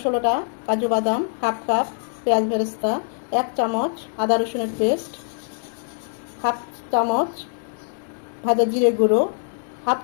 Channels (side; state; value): right; silent; digital silence